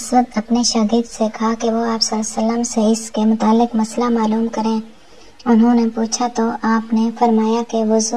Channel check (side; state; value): both; identical; correlation 1.00